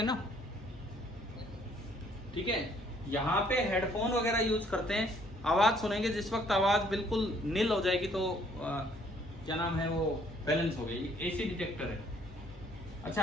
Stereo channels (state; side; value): normal; both; correlation 0.63